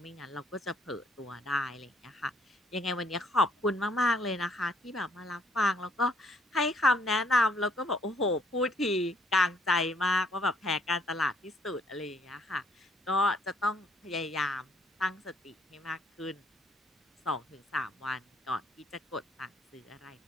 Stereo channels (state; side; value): normal; both; correlation 0.65